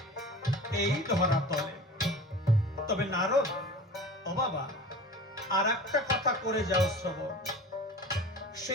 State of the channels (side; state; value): both; normal; correlation 0.37